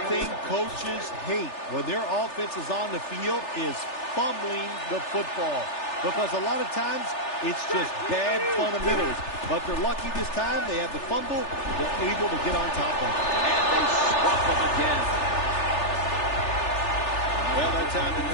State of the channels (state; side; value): late; right; 3.4 ms